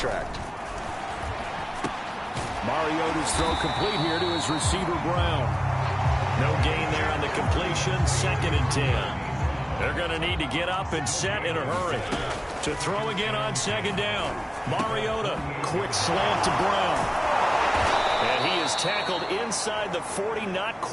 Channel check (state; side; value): identical; both; correlation 1.00